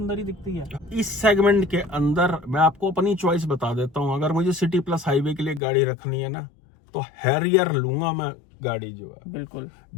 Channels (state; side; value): drops out; right; at 5.6 s